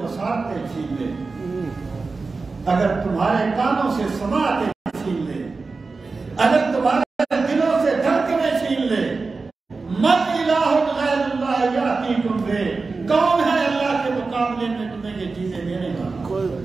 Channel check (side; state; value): left; quieter; 4.1 dB